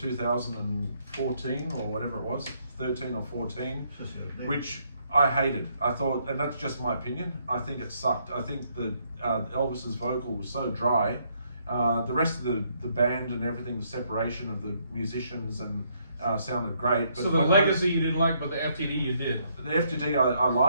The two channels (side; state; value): both; inverted; correlation -0.71